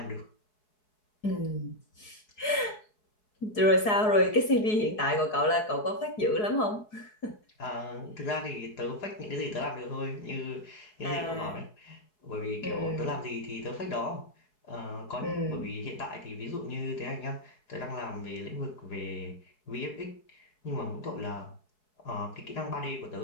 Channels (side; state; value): right; late; 4.7 ms